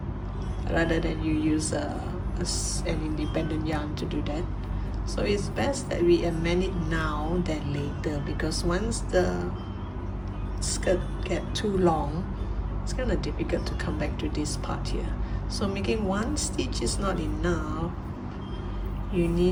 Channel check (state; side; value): identical; both; correlation 1.00